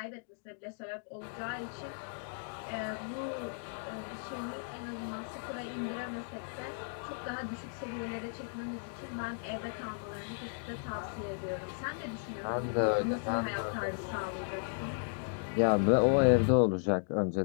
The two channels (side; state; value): right; silent; digital silence